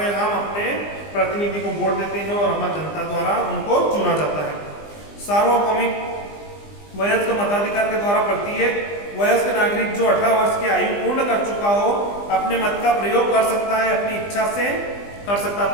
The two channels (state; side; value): late; right; 20 ms